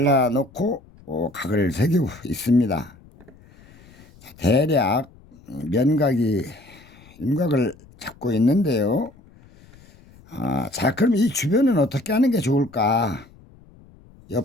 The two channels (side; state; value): left; noise; rumble, 25 dB below the sound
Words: 각을 새기고 있습니다. 자, 대략 면각이 윤곽을 잡고 있는데요. 자, 그럼 이 주변은 어떻게 하는 게 좋을까?